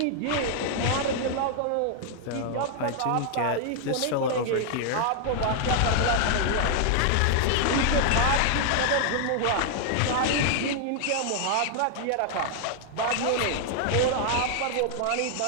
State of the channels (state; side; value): different; both; correlation 0.00